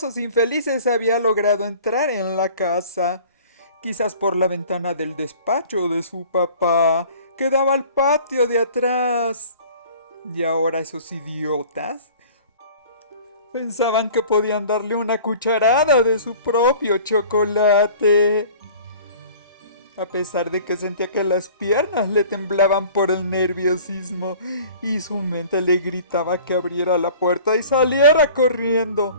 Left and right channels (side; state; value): both; inverted; correlation -0.47